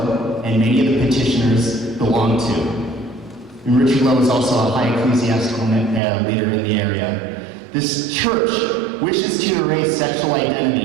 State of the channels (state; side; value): drops out; left; at 6.0 s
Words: and many of the petitioners belong to. And Richard Lowe is also a high ecclesiastical leader in the area. This church wishes to erase sexual